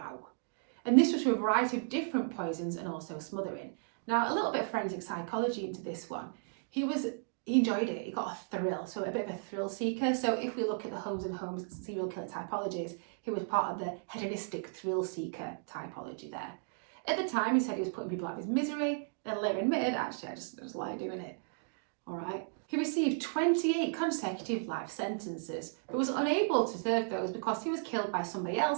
And this was through a variety of different poisons and also smothering. Now, a little bit of forensic psychology into this one. He enjoyed it. He got a thrill, so a bit of a thrill seeker. So if we look at the Holmes and Holmes serial killer typologies, he was part of the hedonistic thrill seeker typology there. At the time, he said he was putting people out of his misery. and later admitted, actually, I just like doing it. All right. He received 28 consecutive life sentences, but was unable to serve those because he was killed by somebody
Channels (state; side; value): silent; left; digital silence